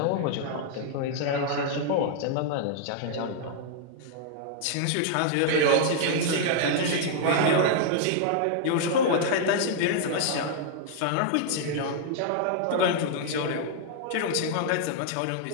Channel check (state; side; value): different; both; correlation -0.01